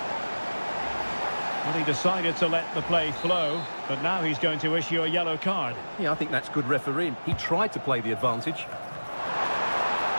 Well, he decided to let the play flow, but now he's going to issue a yellow card. Yeah, I think that's good refereeing. He tried to play the advantage.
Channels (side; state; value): both; inverted; correlation -1.00